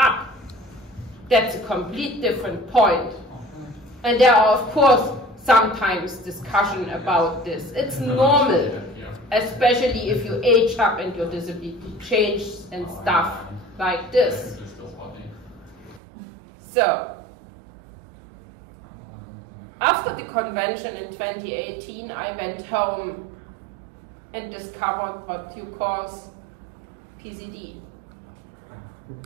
that's a complete different point. And there are, of course, sometimes discussion about this. It's normal, especially if you age up and your disability changes and stuff like this. So, after the convention in 2018, I went home and discovered what you call PCD.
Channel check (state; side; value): drops out; left; at 16.0 s